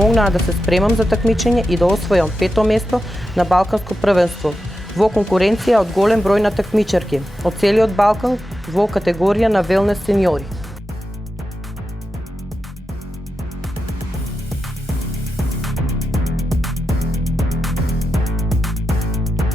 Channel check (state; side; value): normal; both; correlation 0.90